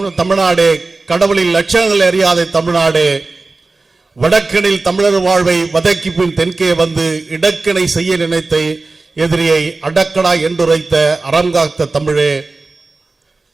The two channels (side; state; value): left; quieter; 3.6 dB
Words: தமிழ்நாடு, கடவுளின் லட்சணங்கள் அறியாத தமிழ்நாடு, வடக்கினில் தமிழர் வாழ்வை வதக்கி பின் தென்கே வந்து இடக்கிணை செய்ய நினைத்த எதிரியை அடக்கடா என்றுரைத்த அறங்காத்த தமிழே,